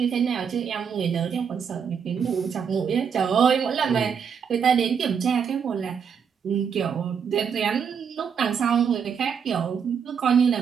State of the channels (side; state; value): left; quieter; 7.0 dB